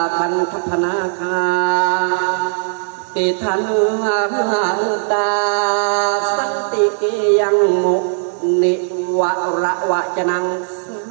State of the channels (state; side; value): silent; left; digital silence